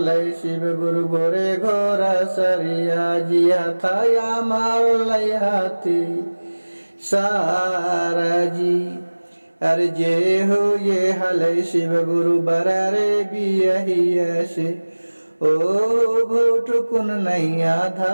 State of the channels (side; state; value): both; inverted; correlation -1.00